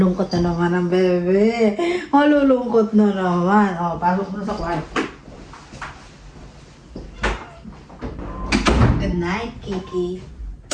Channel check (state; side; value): identical; both; correlation 1.00